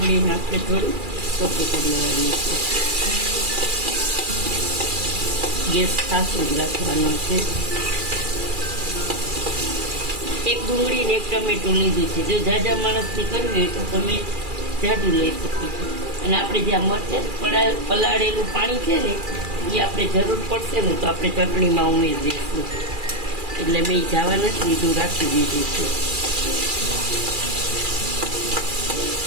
આપણે થોડું ચોખ્ખું કરી લેવાની છે. ગેસ ખાસો જ રાખવાનો છે. એક ડુંગળી ને એક ટમેટું લીધું છે. જો જાજા માણસથી કરવી હોય તો તમે જાડું લઈ શકો છો. અને આપણે જે આ મરચાં પલાળેલું પાણી છે ને એ આપણે જરૂર પડશે ને તો આપણે ચટણીમાં ઉમેરી દઈશું. એટલે મેં જવા નથી દીધું, રાખી દીધું છે.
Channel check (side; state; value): left; late; 2.4 ms